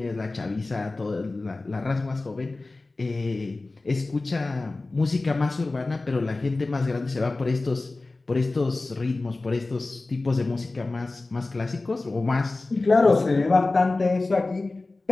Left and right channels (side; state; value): right; quieter; 3.3 dB